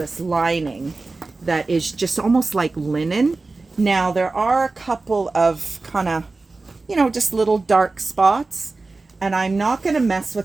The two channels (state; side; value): quieter; left; 3.6 dB